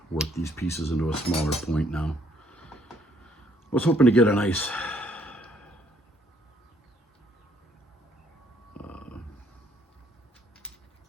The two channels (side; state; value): both; normal; correlation 0.66